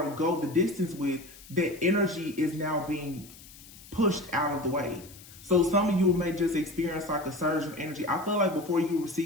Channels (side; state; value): left; noise; hiss, 20 dB below the sound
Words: go the distance with, that energy is now being pushed out of the way. So some of you may just experience like a surge of energy. I feel like before you